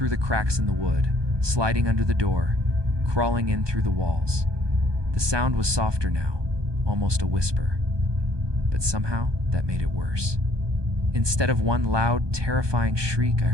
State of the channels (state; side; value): late; left; 1.2 ms